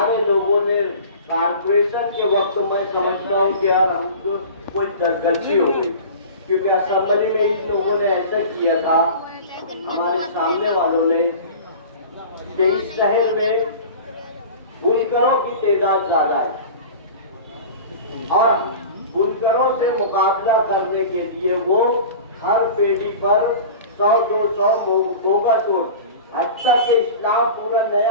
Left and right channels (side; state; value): both; inverted; correlation -0.37